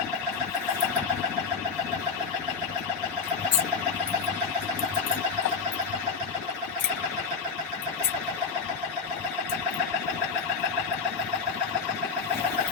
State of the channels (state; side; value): quieter; right; 5.4 dB